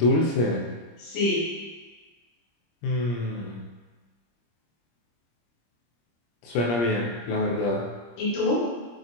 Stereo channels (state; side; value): late; right; 25 ms